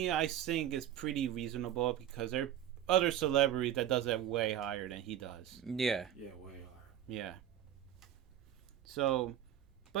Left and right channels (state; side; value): quieter; left; 10.9 dB